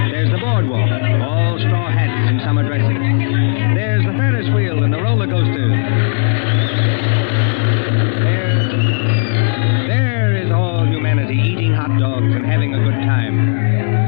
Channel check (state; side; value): silent; right; digital silence